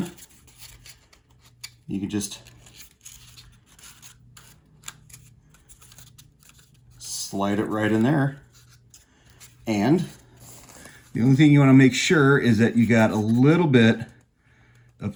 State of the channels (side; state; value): both; identical; correlation 1.00